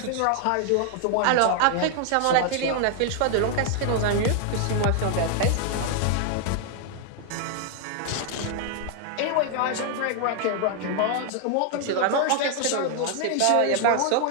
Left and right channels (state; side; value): different; both; correlation 0.00